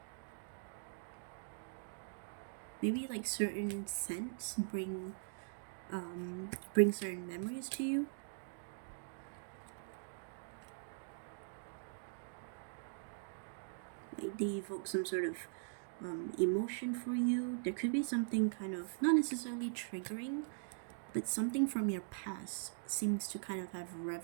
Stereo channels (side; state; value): left; silent; digital silence